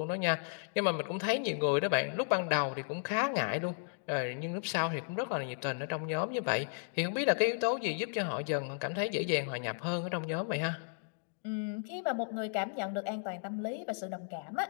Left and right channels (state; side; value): silent; right; digital silence